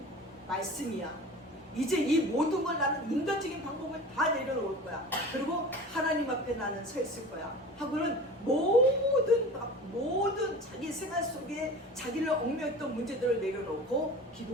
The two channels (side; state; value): both; normal; correlation 0.37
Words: 말씀이야. 이제 이 모든 걸 나는 인간적인 방법을 다 내려놓을 거야. 그리고 하나님 앞에 나는 서 있을 거야. 하고는 모든 자기 생활 속에 자기를 얽매였던 문제들을 내려놓고